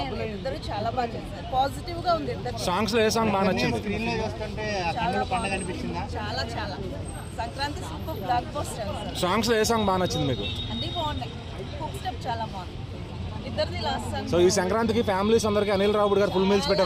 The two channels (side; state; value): both; identical; correlation 1.00